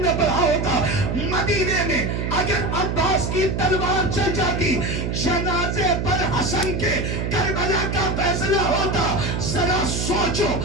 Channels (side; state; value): right; noise; hum, 1 dB below the sound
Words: نے پڑھا ہوتا، مدینے میں اگر عباس کی تلوار چل جاتی، جنازے پر حسن کے کربلا کا فیصلہ ہوتا. ذرا سوچو،